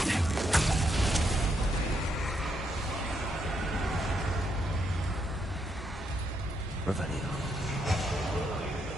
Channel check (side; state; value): both; normal; correlation 0.78